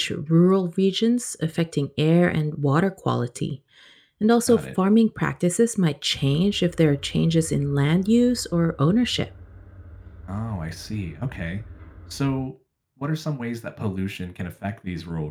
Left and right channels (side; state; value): both; identical; correlation 1.00